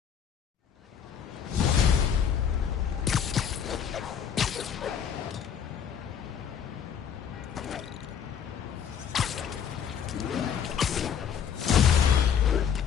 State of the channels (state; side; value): quieter; right; 8.0 dB